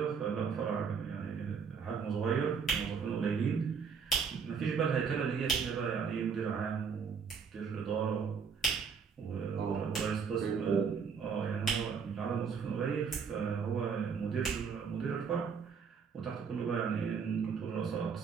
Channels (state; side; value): quieter; left; 6.1 dB